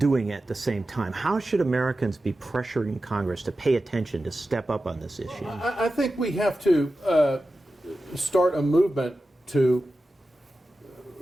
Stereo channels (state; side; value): normal; both; correlation 0.93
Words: at the same time? How should Americans be pressuring Congress to pay attention, to step up on this issue? I think we have to start a movement to